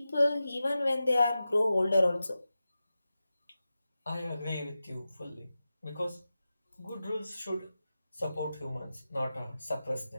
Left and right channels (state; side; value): inverted; both; correlation -0.93